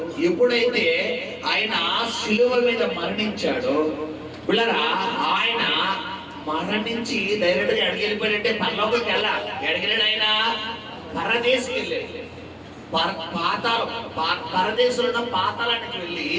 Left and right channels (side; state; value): both; identical; correlation 1.00